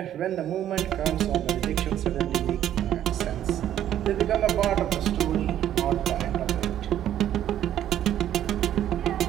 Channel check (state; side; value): quieter; left; 11.3 dB